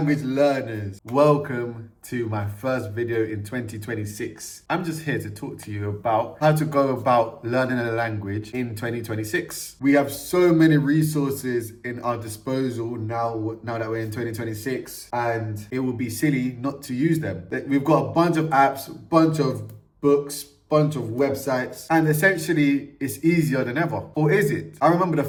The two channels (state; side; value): identical; both; correlation 1.00